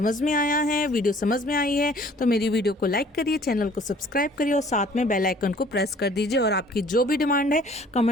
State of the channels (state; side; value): normal; both; correlation 0.54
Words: में आया है, वीडियो समझ में आई है तो मेरी वीडियो को लाइक करिए, चैनल को सब्सक्राइब करिए और साथ में बेल आइकन को प्रेस कर दीजिए। और आपकी जो भी डिमांड है